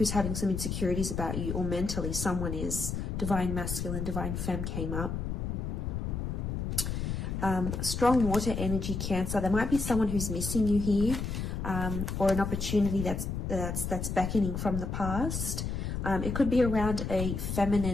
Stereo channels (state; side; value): noise; left; rumble, 3 dB below the sound